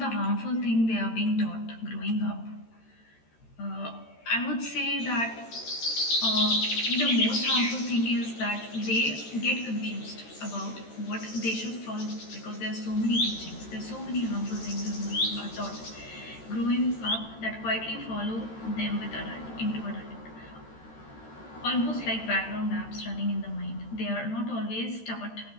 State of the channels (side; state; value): right; late; 13 ms